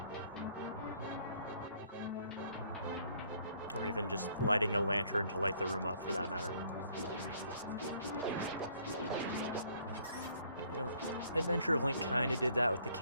Or even just lighting a lantern to light the room up, for that matter. You know, Adventure of Link kind of did that with the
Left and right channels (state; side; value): inverted; both; correlation -0.62